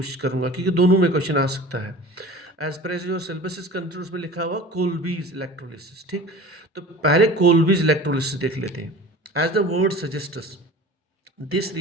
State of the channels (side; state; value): both; normal; correlation 0.39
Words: करूंगा क्योंकि दोनों में क्वेश्चन आ सकता है। As per as your syllabus is control उसमें लिखा हुआ कोल्बीज इलेक्ट्रोलिसिस। ठीक, तो पहले कोल्बीज इलेक्ट्रोलिसिस देख लेते हैं। As the word suggests, this